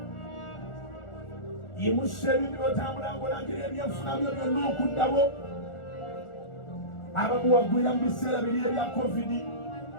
Yimusa ebintu by'otambula ng'olangirira ebyenfuna byo byonna okuddawo. Abamu wagwira mu biseera biri ebya COVID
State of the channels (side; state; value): right; late; 1.4 ms